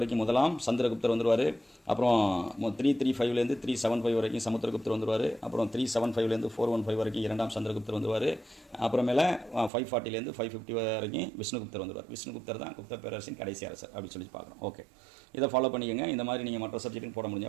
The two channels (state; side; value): drops out; left; at 9.7 s